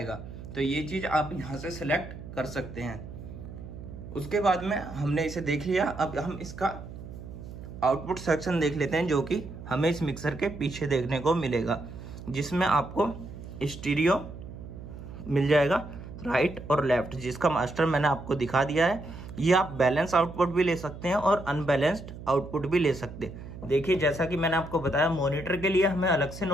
तो ये चीज़ आप यहाँ से सेलेक्ट कर सकते हैं। उसके बाद में हमने इसे देख लिया, अब हम इसका आउटपुट सेक्शन देख लेते हैं जो कि हमें इस मिक्सर के पीछे देखने को मिलेगा, जिसमें आपको स्टीरियो मिल जाएगा राइट और लेफ्ट, जिसका मास्टर मैंने आपको दिखा दिया है। ये आप बैलेंस आउटपुट भी ले सकते हैं और अनबैलेंस्ड आउटपुट भी ले सकते हैं। देखिए जैसा कि मैंने आपको बताया मॉनिटर के लिए हमें अलग से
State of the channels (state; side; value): noise; right; hum, 12 dB below the sound